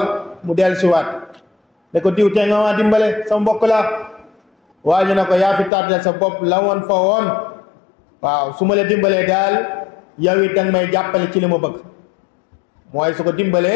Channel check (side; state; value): right; drops out; at 5.7 s